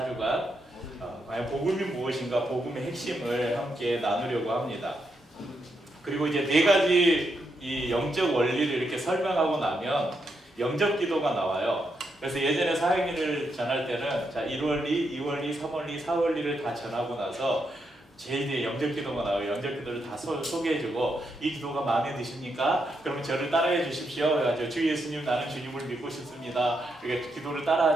과연 복음이 무엇인가, 복음의 핵심을 함께 나누려고 합니다. 그리고 이제 네 가지 이 영적 원리를 이렇게 설명하고 나면 영적 기도가 나와요. 그래서 예전에 사형리를 전할 때는 1원리, 2원리, 3원리, 4원리를 다 전하고 나서 제일 뒤에 영적 기도가 나와요. 영적 기도를 다 소개해주고, 이 기도가 마음에 드십니까? 그러면 저를 따라해 주십시오. 그래가지고 주 예수님, 나는 주님을 믿고 싶습니다. 이렇게 기도를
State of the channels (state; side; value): normal; both; correlation 0.81